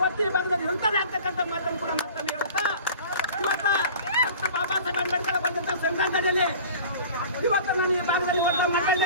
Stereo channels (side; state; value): both; inverted; correlation -0.43